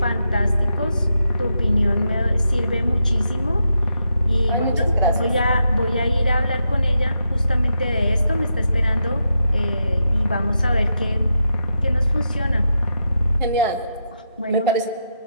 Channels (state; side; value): inverted; both; correlation -0.83